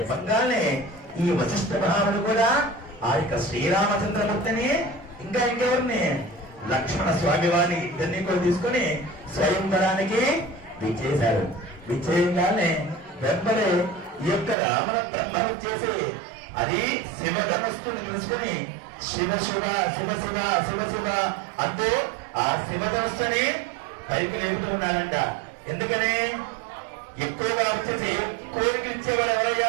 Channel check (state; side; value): drops out; left; at 14.6 s